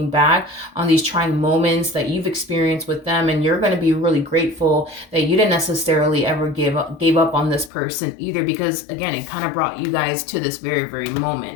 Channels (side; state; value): right; drops out; at 7.7 s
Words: back on these trying moments that you've experienced with them, and you're going to be really grateful that you didn't necessarily ever gave up on this person either, because again, it kind of brought you guys to this very, very